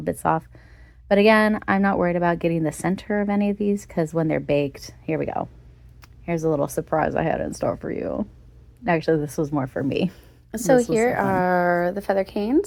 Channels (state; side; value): identical; both; correlation 1.00